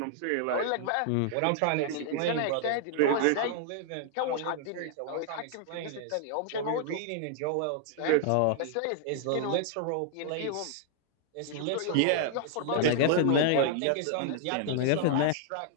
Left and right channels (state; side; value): different; both; correlation -0.01